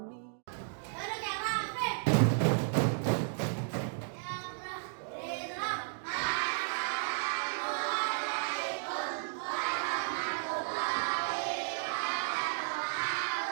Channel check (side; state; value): left; silent; digital silence